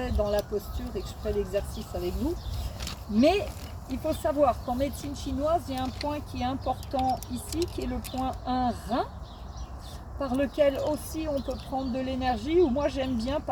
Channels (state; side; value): identical; both; correlation 1.00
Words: dans la posture et que je ferai l'exercice avec vous. Mais il faut savoir qu'en médecine chinoise, il y a un point qui est important ici, qui est le point 1 rein, par lequel aussi on peut prendre de l'énergie, ou moi j'aime bien